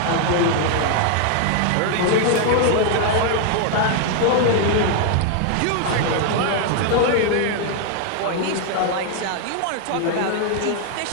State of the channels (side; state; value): both; different; correlation 0.00